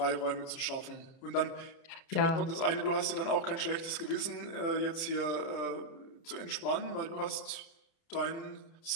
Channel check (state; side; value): late; right; 30 ms